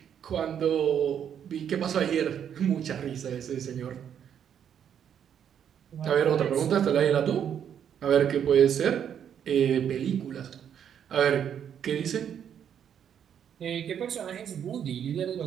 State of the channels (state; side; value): quieter; left; 8.8 dB